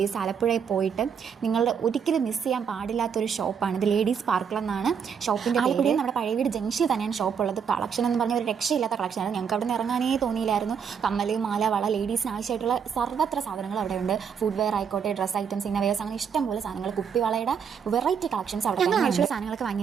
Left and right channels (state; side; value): quieter; left; 7.0 dB